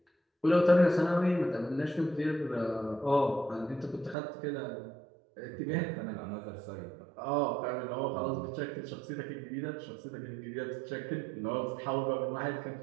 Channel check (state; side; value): drops out; left; at 4.2 s